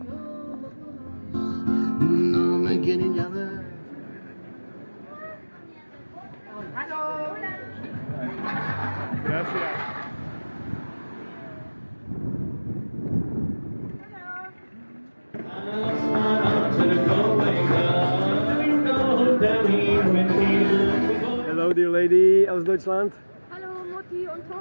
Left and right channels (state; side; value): inverted; both; correlation -1.00